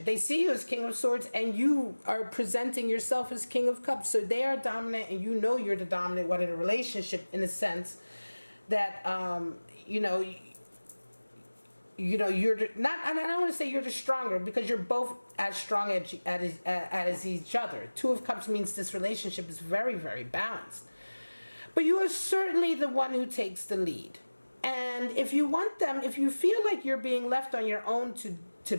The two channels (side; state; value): both; inverted; correlation -1.00